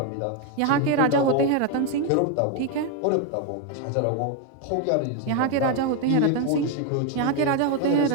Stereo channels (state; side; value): different; both; correlation 0.01